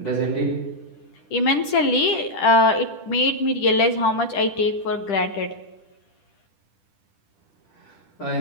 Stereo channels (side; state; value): right; late; 10 ms